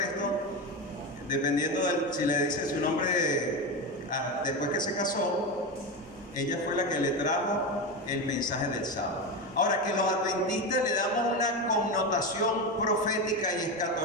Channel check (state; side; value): normal; both; correlation 0.17